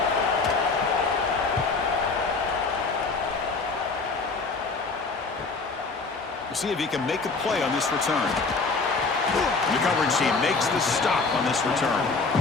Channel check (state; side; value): quieter; right; 4.2 dB